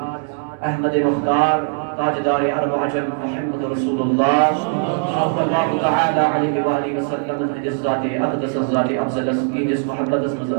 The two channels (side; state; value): left; silent; 66 dB below the other